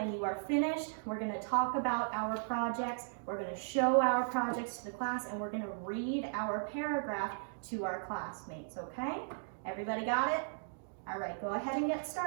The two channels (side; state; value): left; silent; digital silence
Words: you are finished, we're going to talk about our projects, we're going to show our projects to the class, and we're going to read our paragraph to our classmates, okay? Everybody got it? All right, go ahead and get